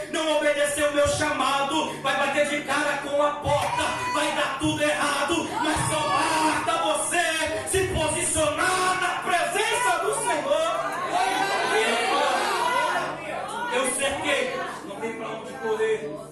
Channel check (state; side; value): identical; both; correlation 1.00